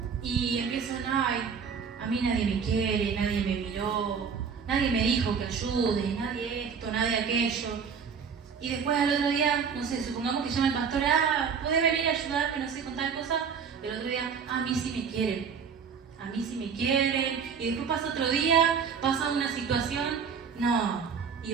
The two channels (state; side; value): quieter; left; 6.4 dB